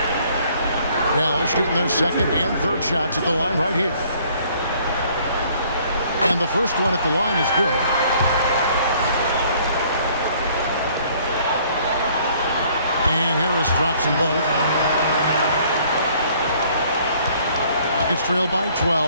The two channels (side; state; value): both; inverted; correlation -0.60